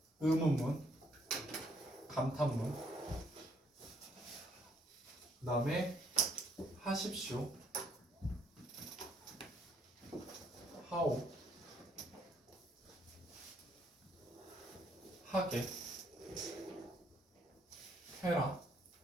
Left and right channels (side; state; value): both; normal; correlation 0.68